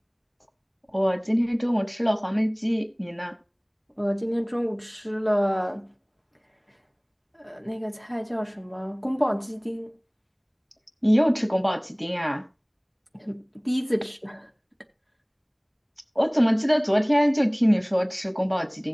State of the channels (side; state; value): both; identical; correlation 1.00